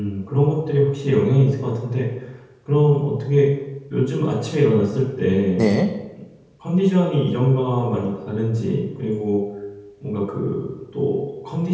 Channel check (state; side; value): identical; both; correlation 1.00